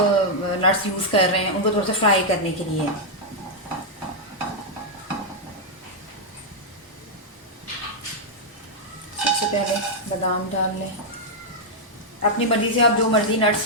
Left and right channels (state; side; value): normal; both; correlation -0.04